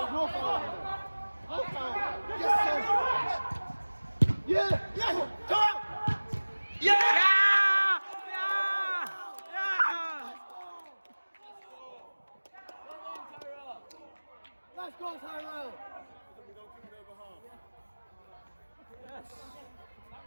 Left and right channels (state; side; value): inverted; both; correlation -1.00